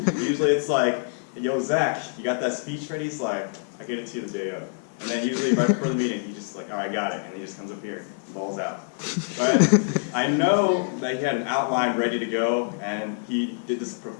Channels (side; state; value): right; silent; digital silence